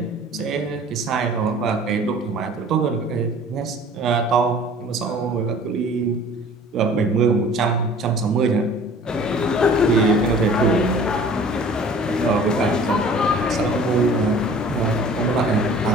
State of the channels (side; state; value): both; normal; correlation 0.47